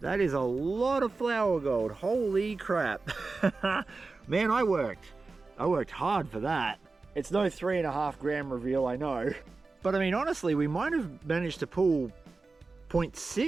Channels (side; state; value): left; quieter; 3.9 dB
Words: That is a lot of flower gold. Holy crap. Man, I worked hard for that. It's no 3.5 gram reveal, I know. But I mean, honestly, we might have managed to pull